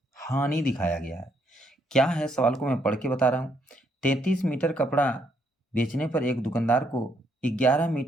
हानि दिखाया गया है। क्या है सवाल को मैं पढ़ के बता रहा हूँ। 33 मीटर कपड़ा बेचने पर एक दुकानदार को 11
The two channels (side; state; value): both; normal; correlation 0.73